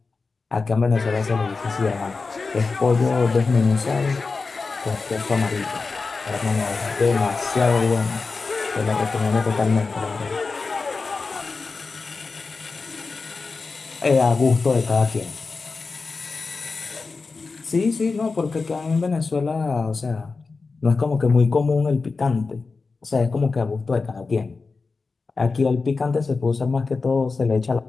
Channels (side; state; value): right; quieter; 4.2 dB